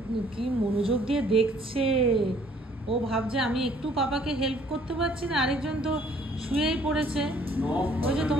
কি মনোযোগ দিয়ে দেখছে। ও ভাবছে আমি একটু পাপাকে হেল্প করতে পারছি না, আরেকজন তো শুয়েই পড়েছে। ওই যে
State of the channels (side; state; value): both; normal; correlation 0.60